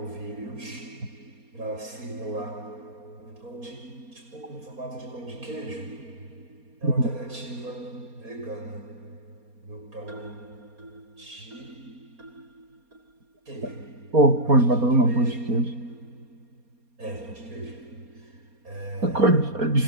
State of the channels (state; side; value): late; left; 4.3 ms